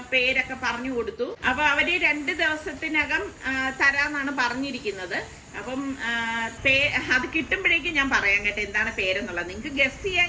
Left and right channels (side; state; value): both; identical; correlation 1.00